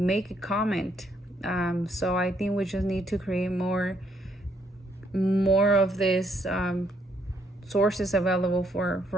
a comment. So I think we just need to create more of this sources available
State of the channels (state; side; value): normal; both; correlation 0.72